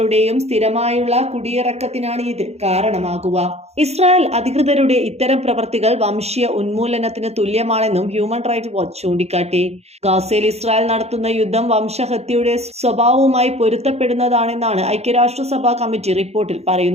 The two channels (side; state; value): left; late; 0.31 ms